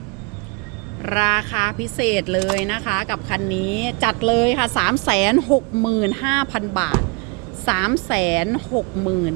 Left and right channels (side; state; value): left; quieter; 30.8 dB